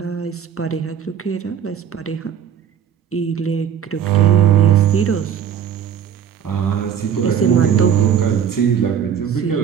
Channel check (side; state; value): left; quieter; 8.5 dB